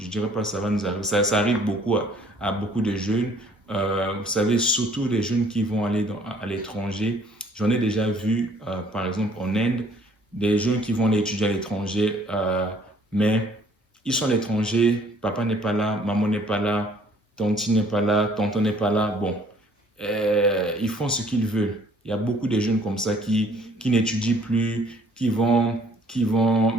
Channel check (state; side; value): normal; both; correlation 0.59